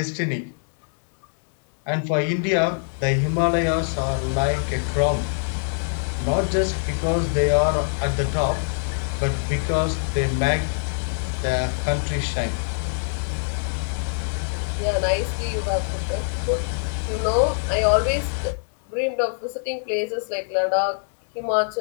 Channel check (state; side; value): silent; right; digital silence